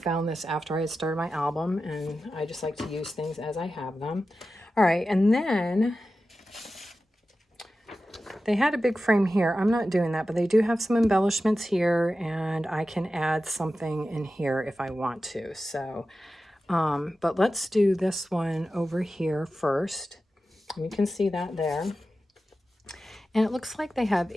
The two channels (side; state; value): both; normal; correlation 0.93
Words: this after I had started my album, and I just like to use things as I have them. All right, and then they had a big frame here. I'm not doing that, but they do have some embellishments here, and I can add something in here if I want to. So, but let's do this one over here first. You can see that there. And it looks like they have